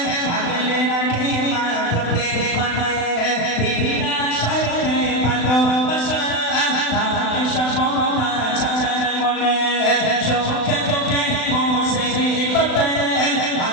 আগলে রাখে মা প্রতি মানে বিনা স্বার্থে ভালোবাসা তাকে সততা চাচার মনে চোখে চোখে বসে বাতে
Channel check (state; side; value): late; right; 36 ms